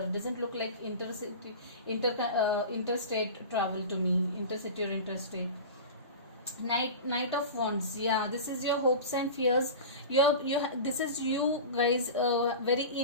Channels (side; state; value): both; inverted; correlation -0.31